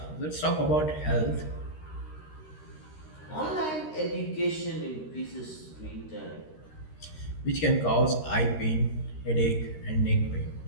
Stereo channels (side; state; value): right; late; 13 ms